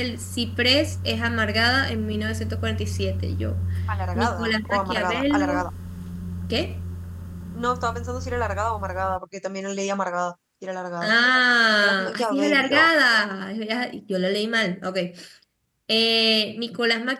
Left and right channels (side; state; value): both; identical; correlation 1.00